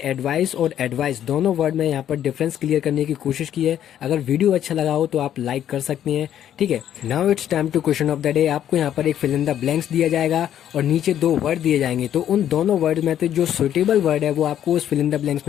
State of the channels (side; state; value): right; quieter; 10.6 dB